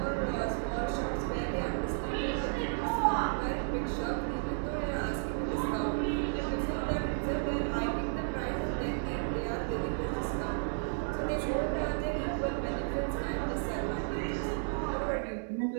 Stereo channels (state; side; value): silent; left; digital silence